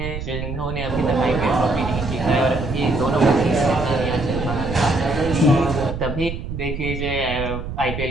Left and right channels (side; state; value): right; noise; rumble, 6 dB below the sound